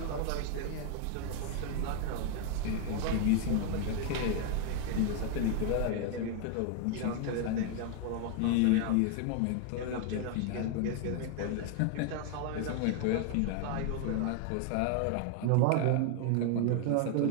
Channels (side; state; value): both; different; correlation 0.00